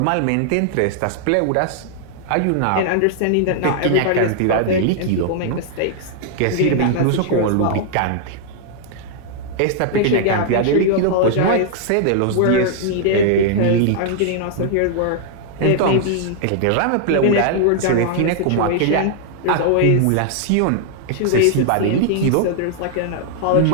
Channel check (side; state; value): both; different; correlation -0.01